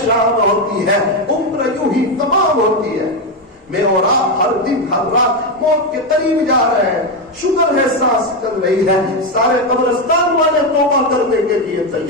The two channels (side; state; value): both; normal; correlation 0.09